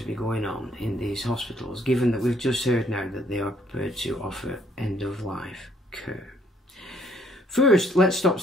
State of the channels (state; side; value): normal; both; correlation 0.65